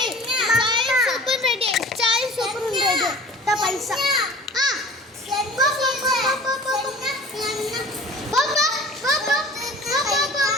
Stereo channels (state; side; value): normal; both; correlation 0.43